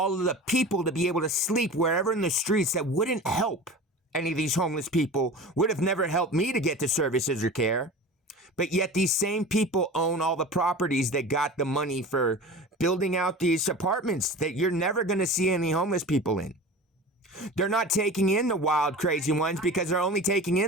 of the people to be able to sleep wherever in the streets that wouldn't help any of these homeless people, would have never helped me to get to services or care. But yet these same people own all the properties that got the money for building out these apartments that you're never going to see any homeless people in. They're not taking in the wild, crazy ones because they're only taking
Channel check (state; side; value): normal; both; correlation 0.35